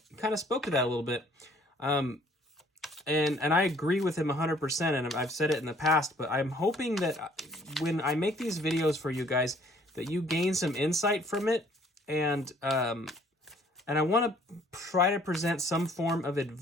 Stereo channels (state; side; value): normal; both; correlation 0.60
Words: kind of spoke to that a little bit. And I agree with him 100%, and I've said it in the past, but I'm hoping that when I make these videos for you guys, that you gain some insight from it, and I want to try to present some form of